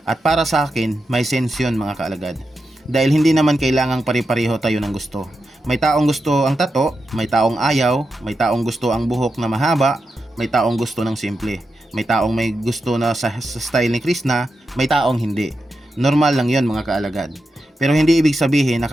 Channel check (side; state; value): both; normal; correlation 0.88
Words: At para sa akin, may sense yun mga kaalagad. Dahil hindi naman kailangang pare-pareho tayo ng gusto. May taong gusto ang tato, may taong ayaw, may taong gusto ang buhok na mahaba, may taong gusto ng simple. May taong may gusto na sa style ni Krishna, may taong hindi. Normal lang yon mga kaalagad. Pero hindi ibig sabihin na